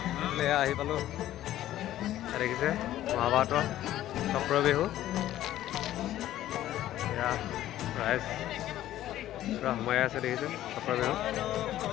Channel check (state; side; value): quieter; right; 13.4 dB